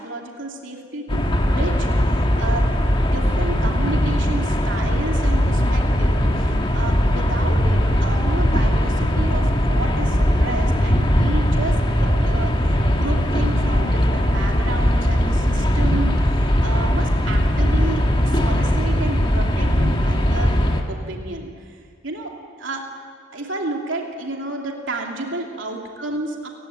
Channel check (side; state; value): both; normal; correlation 0.85